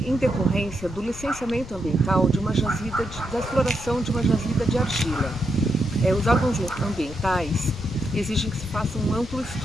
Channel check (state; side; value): noise; left; rumble, 14 dB below the sound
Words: em decorrência do licenciamento ambiental de uma jazida, da exploração de uma jazida de argila. Os órgãos ambientais exigem que se faça um amplo